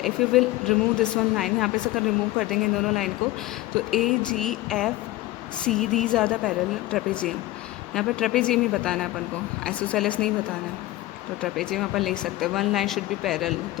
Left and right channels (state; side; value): quieter; right; 17.2 dB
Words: If you will remove this one line, यहाँ पे से अगर रिमूव कर देंगे इन दोनों लाइन को, तो A G F C these are the parallel trapezium. यहाँ पे ट्रेपेजियम ही बताना है अपन को, आइसोसेलेस नहीं बताना है. तो ट्रेपेजियम अपन लिख सकते हैं. One line should be parallel,